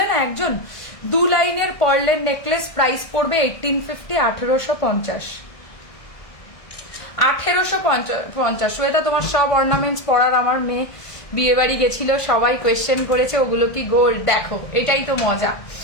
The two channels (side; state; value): right; late; 1.5 ms